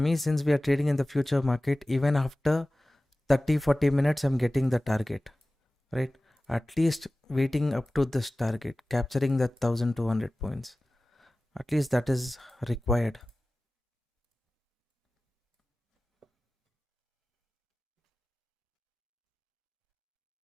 since we are trading in the future market, even after 30-40 minutes, I'm getting the target, right? At least waiting up to this target, capturing that 1200 points. At least that is required.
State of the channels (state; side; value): normal; both; correlation 0.97